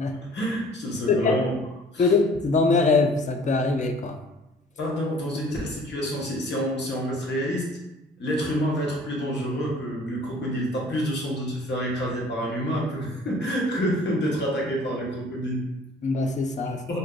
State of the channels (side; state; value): both; normal; correlation 0.52